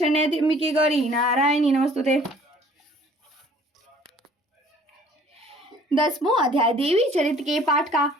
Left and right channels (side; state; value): both; normal; correlation 0.54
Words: त्र्यंबके गौरी नारायणी नमोस्तुते। 10वां अध्याय देवी चरित्र के पाठ का